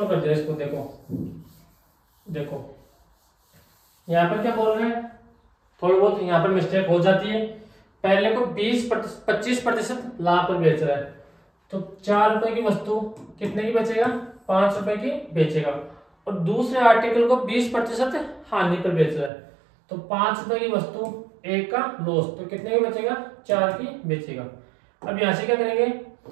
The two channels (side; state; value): left; drops out; at 19.3 s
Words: कर दिया इसको। देखो यहाँ पर क्या बोल रहे हैं, थोड़ी बहुत यहाँ पर मिस्टेक हो जाती है। पहले को 25% लाभ पर बेच रहा है, तो 4 रुपए की वस्तु कितने की बेचेगा, 5 रुपए की बेचेगा। और दूसरे आर्टिकल को 20% हानि पर बेच रहा है, तो 5 रुपए की वस्तु 1 का लॉस, तो कितने की बेचेगा, 4 की बेचेगा। अब यहाँ से क्या करेंगे,